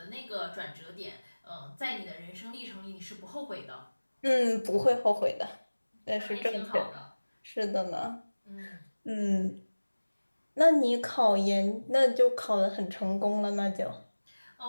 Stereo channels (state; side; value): inverted; both; correlation -1.00